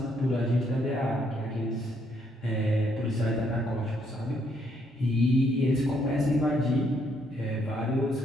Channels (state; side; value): normal; both; correlation 0.72